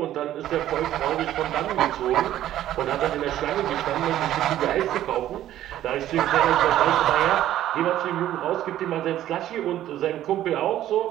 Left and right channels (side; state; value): left; quieter; 12.7 dB